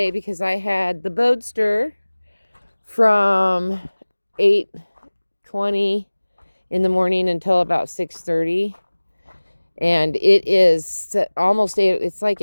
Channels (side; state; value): both; inverted; correlation -1.00